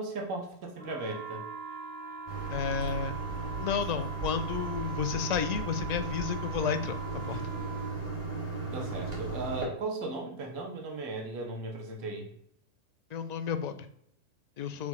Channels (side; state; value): left; late; 1.9 ms